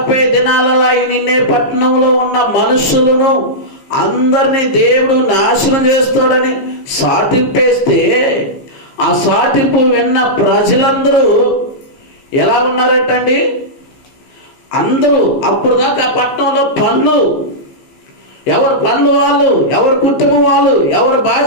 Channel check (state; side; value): late; right; 15 ms